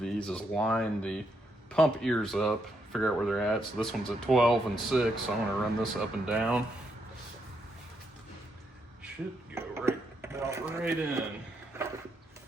is line the pump ears up, figure out where they're at. So this one's at 12 and 6, so I'm gonna run this up and down. Should go right in.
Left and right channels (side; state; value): both; normal; correlation 0.78